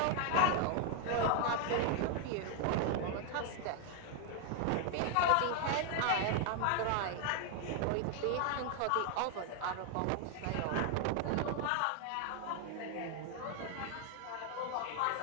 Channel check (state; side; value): different; both; correlation 0.00